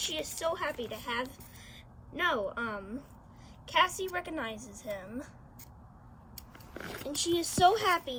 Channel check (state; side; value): identical; both; correlation 1.00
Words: is so happy to have... Cassie recognizes him, and she is so